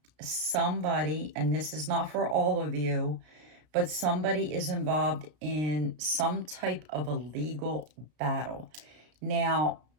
somebody, and this is not for all of you, but somebody is involved in some type of a legal battle. Now,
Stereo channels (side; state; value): left; late; 33 ms